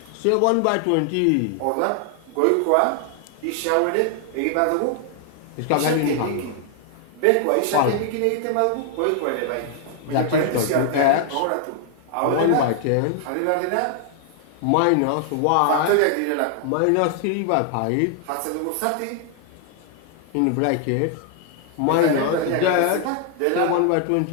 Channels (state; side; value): different; both; correlation 0.00